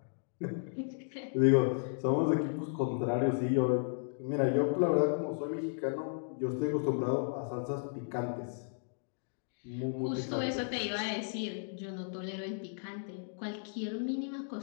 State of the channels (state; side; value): silent; right; digital silence